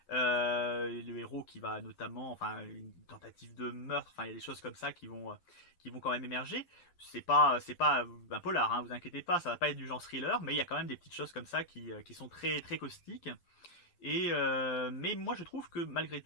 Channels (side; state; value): right; late; 12 ms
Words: Le héros qui va notamment, enfin une tentative de meurtre, enfin il y a des choses comme ça qui vont quand même émerger. C'est pas un polar, hein, vous inquiétez pas, ça va pas être du genre thriller, mais il y a quand même des petites choses comme ça qui sont très très caustiques. Mais moi je trouve que malgré